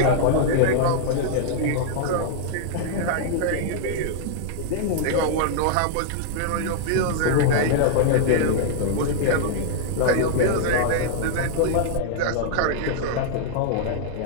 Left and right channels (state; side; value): different; both; correlation -0.01